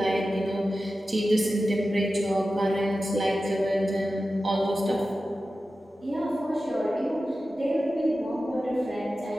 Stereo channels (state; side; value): normal; both; correlation 0.93